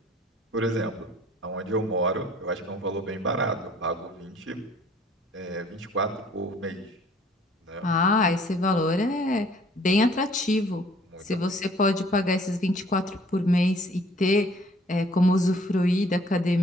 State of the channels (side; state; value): both; normal; correlation 0.57